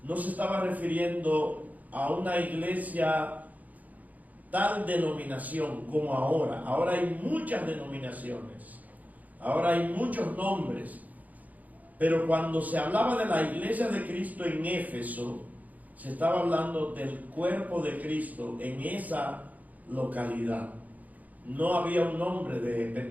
no se estaba refiriendo a una iglesia tal denominación como ahora. Ahora hay muchas denominaciones, ahora hay muchos nombres, pero cuando se hablaba de la iglesia de Cristo en Éfeso, se estaba hablando del cuerpo de Cristo en esa localidad. No había un nombre de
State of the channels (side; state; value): left; late; 0.078 ms